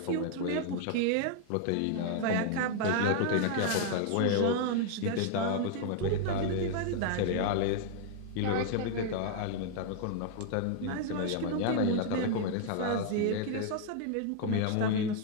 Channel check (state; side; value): different; both; correlation 0.00